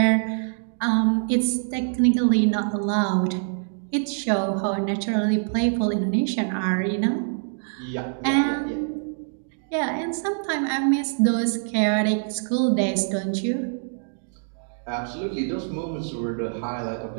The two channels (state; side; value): silent; left; digital silence